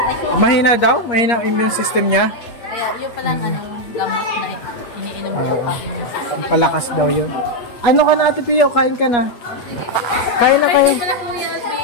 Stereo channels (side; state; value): right; late; 8.5 ms